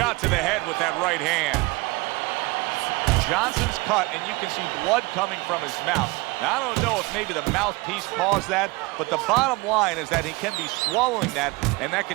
to the head with that right hand. Johnson's cut, and you can see blood coming from his mouth. Now, I don't know if maybe the mouthpiece caused that, but the bottom line is that he can be swallowing that, and that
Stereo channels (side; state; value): left; quieter; 24.4 dB